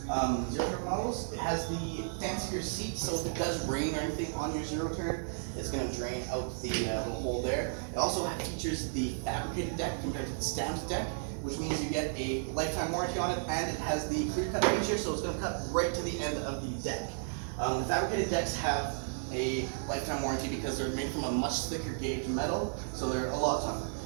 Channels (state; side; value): silent; left; digital silence